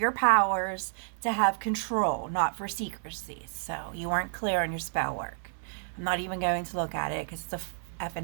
powers to have control, not for secrecy. So you weren't clear on your spell work. I'm not even going to look at it because it's a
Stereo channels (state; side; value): silent; left; digital silence